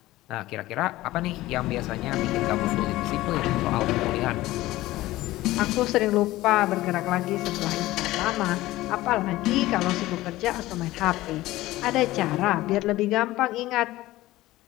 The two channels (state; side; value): quieter; right; 17.2 dB